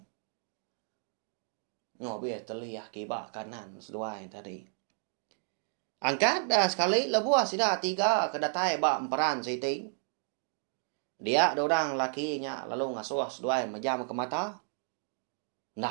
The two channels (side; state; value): left; silent; 56 dB below the other